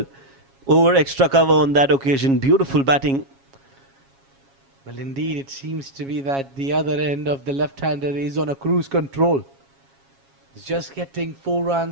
over extra cover on that occasion. Beautiful batting. Well, indeed, it seems to be that the other end of the left-hander is on a cruise control. He's just getting 4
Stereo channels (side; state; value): left; late; 7.3 ms